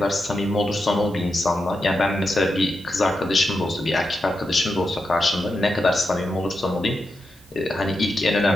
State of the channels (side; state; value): both; normal; correlation 0.87